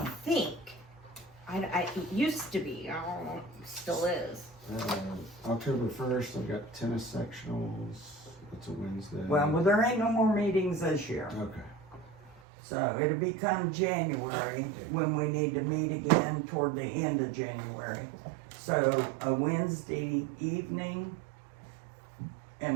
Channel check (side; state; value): left; drops out; at 12.4 s